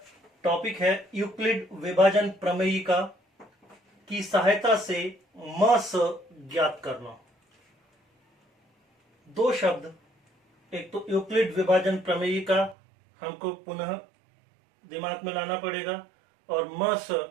टॉपिक है यूक्लिड विभाजन प्रमेयिका की सहायता से म स ज्ञात करना। दो शब्द, एक तो यूक्लिड विभाजन प्रमेयिका हमको पुनः दिमाग में लाना पड़ेगा और म स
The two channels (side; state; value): left; drops out; at 12.8 s